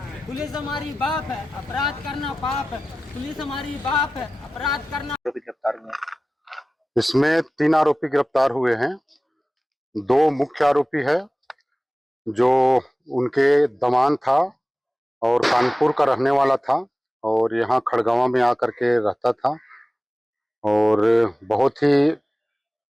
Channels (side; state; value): both; normal; correlation 0.96